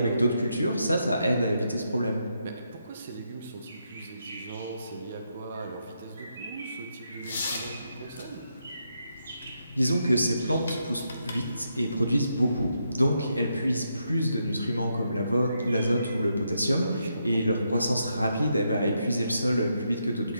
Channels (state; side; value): inverted; both; correlation -0.80